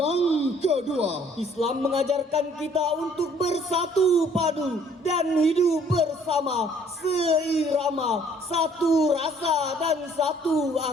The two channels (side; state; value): both; normal; correlation 0.59